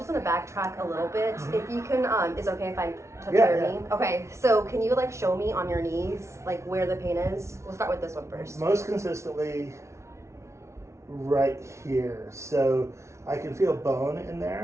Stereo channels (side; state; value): left; late; 0.13 ms